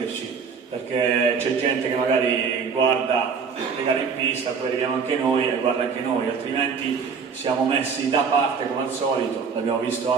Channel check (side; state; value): left; quieter; 5.8 dB